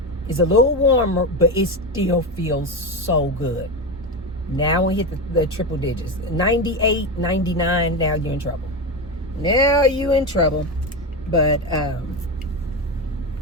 is a little warmer, but it still feels so good. Now we hit the triple digits. 98, 99, now you're in trouble. Now you in trouble. But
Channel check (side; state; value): both; normal; correlation 0.16